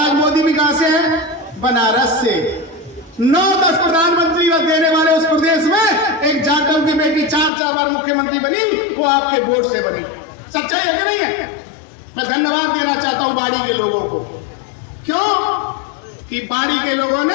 मोदी भी कहां से है? बनारस से। 9-10 प्रधानमंत्री देने वाले उस प्रदेश में एक जाटव की बेटी 4 बार मुख्यमंत्री बनी, वो आपके वोट से बनी। सच्चाई है कि नहीं है? मैं धन्यवाद देना चाहता हूं बाड़ी के लोगों को। क्यों? कि बाड़ी के लोगों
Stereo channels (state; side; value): drops out; right; at 7.5 s